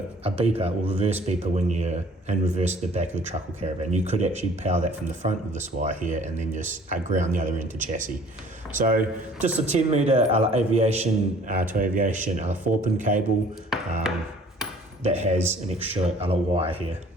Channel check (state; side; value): normal; both; correlation 0.53